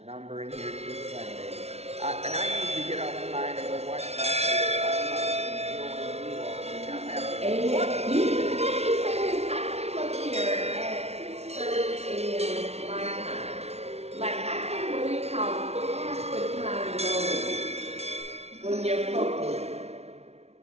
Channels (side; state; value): left; late; 0.31 ms